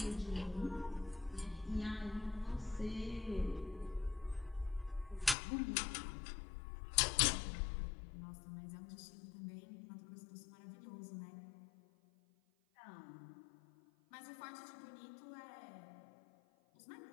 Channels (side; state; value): right; drops out; at 5.4 s